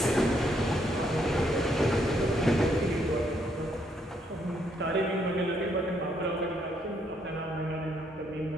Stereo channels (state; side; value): normal; both; correlation 0.72